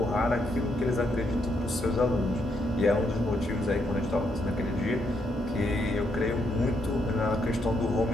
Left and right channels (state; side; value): normal; both; correlation 0.76